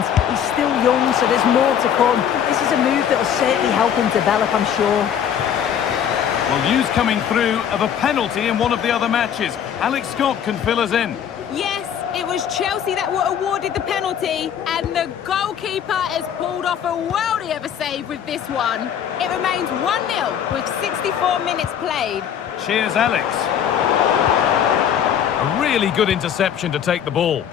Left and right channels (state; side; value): quieter; right; 8.9 dB